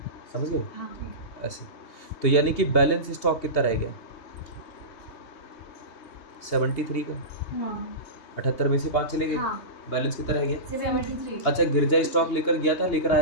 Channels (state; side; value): late; right; 3.2 ms